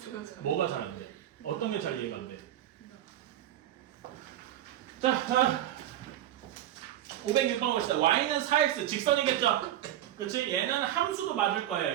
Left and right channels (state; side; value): quieter; left; 12.4 dB